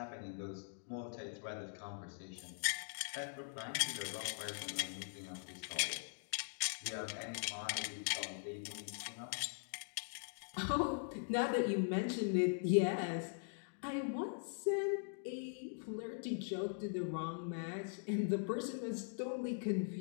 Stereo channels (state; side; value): silent; right; digital silence